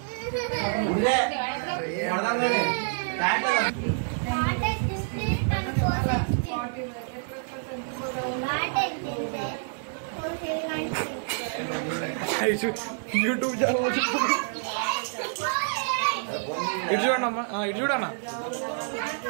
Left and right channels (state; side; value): silent; left; digital silence